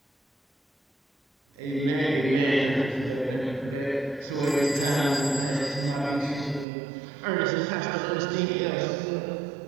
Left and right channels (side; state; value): left; drops out; at 6.7 s